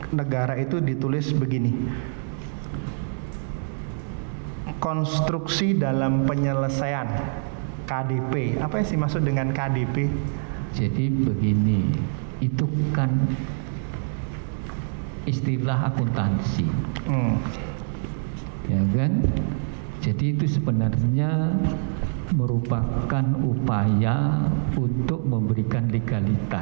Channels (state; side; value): silent; left; digital silence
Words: negara itu ditulis begini. Konstruksi dalam penyelesaian KDP. Apa sih maksud dengan KDP? Jadi begini, itu kan istilah akuntansi, ya kan? Jadi itu sebenarnya merupakan upaya untuk memberikan